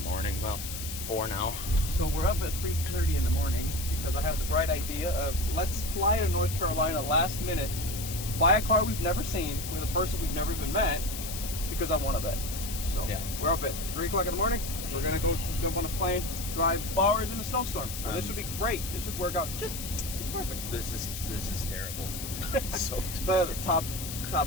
Well, 4 now. So we're up at 3:30 in the morning because I have the bright idea of let's fly to North Carolina last minute, buy a car we've never seen with a person we've never even met because I want to bet. So Yeah. we're up at 3 o'clock in the morning. We're gonna go jump on a plane, drive hours in a snowstorm. So this should be great. This should work out just perfect. This is terrible. So The top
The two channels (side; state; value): left; noise; hiss, 7 dB below the sound